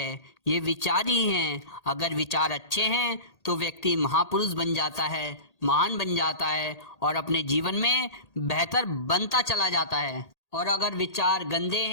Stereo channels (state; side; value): late; right; 1.8 ms